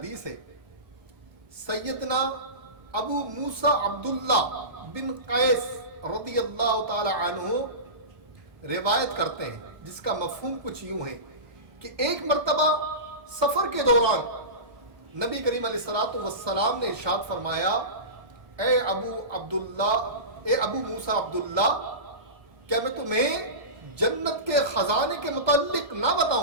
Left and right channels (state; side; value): late; left; 1.2 ms